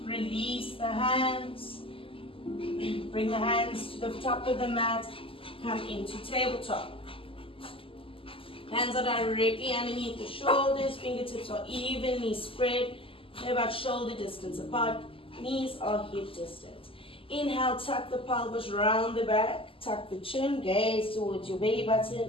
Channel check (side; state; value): right; late; 0.26 ms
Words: release the hands. Bring the hands to the top of the mat, come into tabletop. Hands are directly underneath the shoulders, fingertips are evenly spread. They're about shoulder distance apart, knees are hip distance. Inhale, tuck the pelvis round the back, tuck the chin, gaze towards your belly button